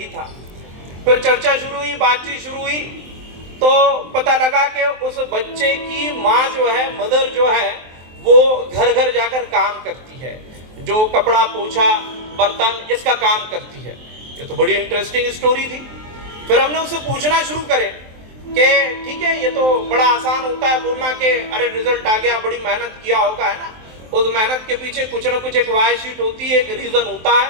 था। फिर चर्चा शुरू हुई, बातचीत शुरू हुई, तो पता लगा कि उस बच्चे की माँ जो है, मदर जो है, वो घर घर जाकर काम करती है, जो कपड़ा पोछा बर्तन इसका काम करती है। ये तो बड़ी इंटरेस्टिंग स्टोरी थी। फिर हमने उससे पूछना शुरू करे कि ठीक है, ये तो बड़ा आसान होता है बोलना कि अरे रिजल्ट आ गया, बड़ी मेहनत किया होगा, है ना। उस मेहनत के पीछे कुछ ना कुछ एक वाई शीट होती है, एक रीजन होता है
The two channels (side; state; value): left; late; 23 ms